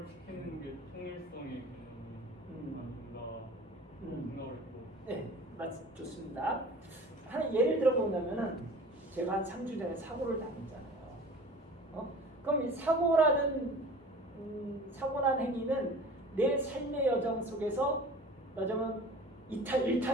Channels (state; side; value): normal; both; correlation 0.42